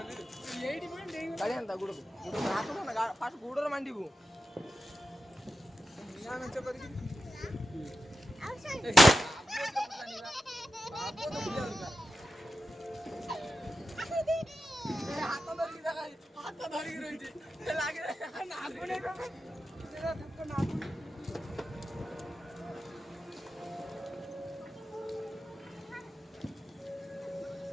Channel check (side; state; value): both; normal; correlation 0.90